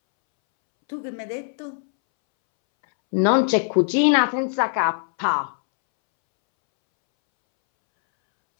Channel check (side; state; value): right; silent; 65 dB below the other